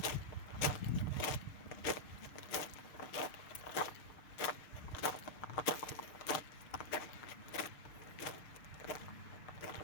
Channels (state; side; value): late; right; 6.6 ms